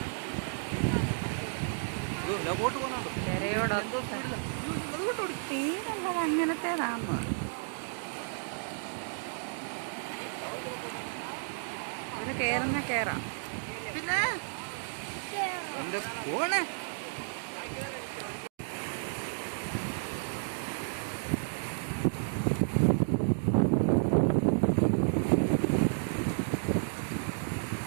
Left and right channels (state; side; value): silent; left; digital silence